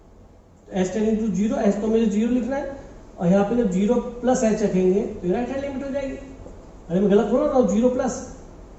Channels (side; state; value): both; identical; correlation 1.00